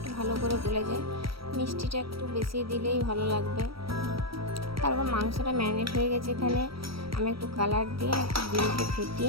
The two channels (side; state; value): left; late; 0.75 ms